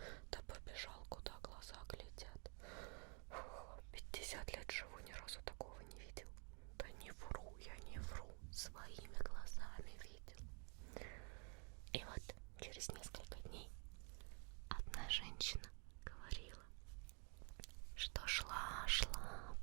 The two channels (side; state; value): left; quieter; 37.4 dB